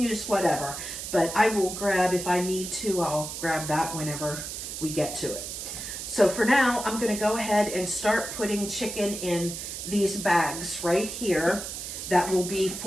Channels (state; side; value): noise; right; hiss, 7 dB below the sound